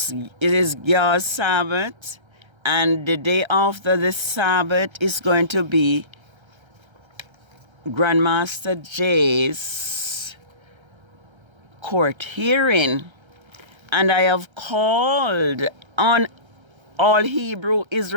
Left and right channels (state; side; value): late; left; 1.3 ms